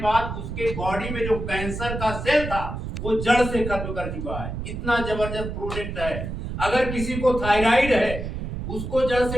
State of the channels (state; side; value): noise; right; rumble, 6 dB below the sound